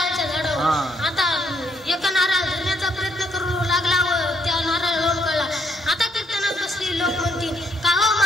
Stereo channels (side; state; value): both; normal; correlation 0.72